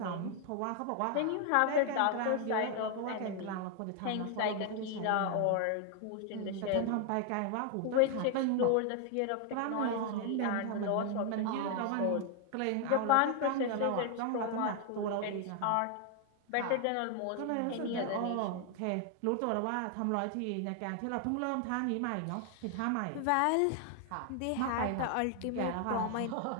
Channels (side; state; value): both; different; correlation 0.00